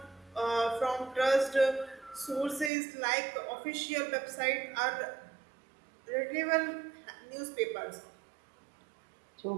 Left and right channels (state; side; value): drops out; left; at 2.7 s